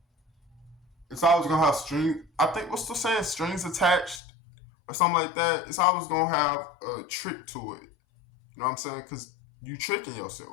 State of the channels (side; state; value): right; drops out; at 4.2 s